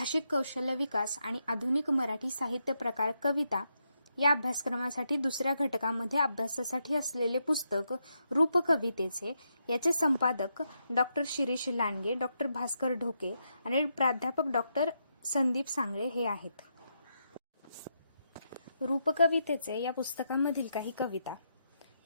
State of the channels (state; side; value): inverted; both; correlation -0.81